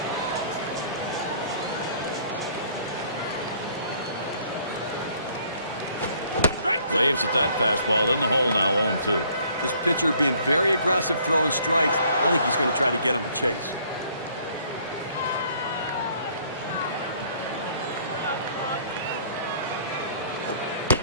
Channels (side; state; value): both; inverted; correlation -0.60